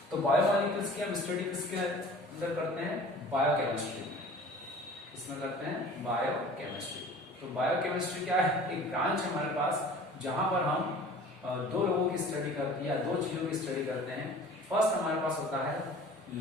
तो बायोमोलिक्यूल्स की हम स्टडी किसके अंदर करते हैं, बायोकेमिस्ट्री में। इसमें करते हैं बायोकेमिस्ट्री। तो बायोकेमिस्ट्री क्या है, एक ब्रांच है हमारे पास जहां पर हम दो लोगों की स्टडी करते हैं या दो चीजों की स्टडी करते हैं। फर्स्ट हमारे पास होता है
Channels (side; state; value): both; normal; correlation 0.45